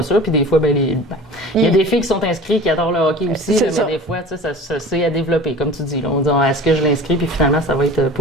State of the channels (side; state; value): both; normal; correlation 0.40